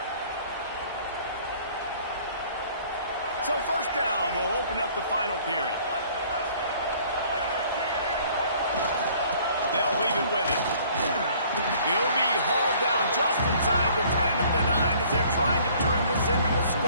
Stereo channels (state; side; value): inverted; both; correlation -0.56